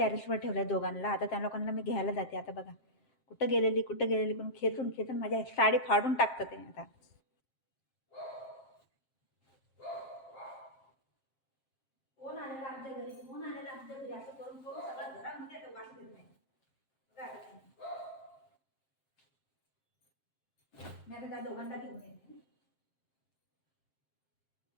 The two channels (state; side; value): late; right; 7.5 ms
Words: ठेवलं दोघांना. आता त्या लोकांना मी घ्यायला जाते. आता बघा कुठं गेलेली करून खेचून खेचून माझ्या साडी फाडून टाकतं ते आता. कोण आलेलं आमच्या घरी, कोण आलेलं आमच्या घरी, असं करून करून सगळं घरामध्ये आता वास घेत नाही. मी आता त्या दोघांना घेऊन येते.